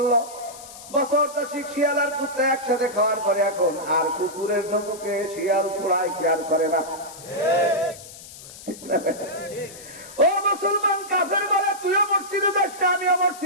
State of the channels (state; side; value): noise; left; hiss, 16 dB below the sound